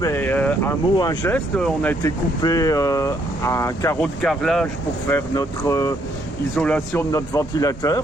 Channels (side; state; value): both; normal; correlation 0.70